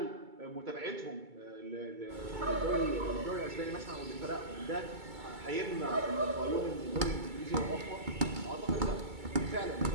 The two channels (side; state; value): left; late; 2.3 ms